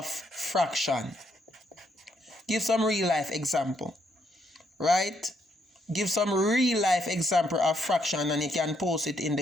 fraction. Give some real life example. Right? Give some real life example of fraction and you can post it in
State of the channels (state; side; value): normal; both; correlation 0.75